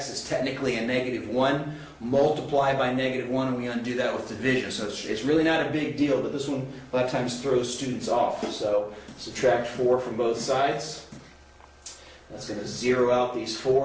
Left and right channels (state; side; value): identical; both; correlation 1.00